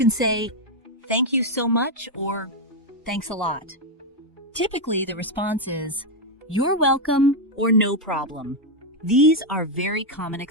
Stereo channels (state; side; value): normal; both; correlation 0.02